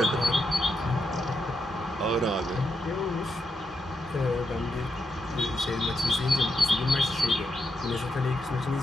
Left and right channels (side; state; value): both; normal; correlation 0.82